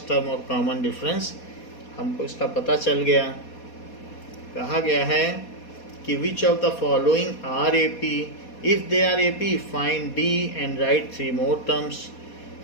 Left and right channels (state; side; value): late; right; 4.2 ms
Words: टर्म और कॉमन डिफरेंस हमको इसका पता चल गया। कहा गया है कि which of the following are AP, if they are AP find d and write 3 more terms.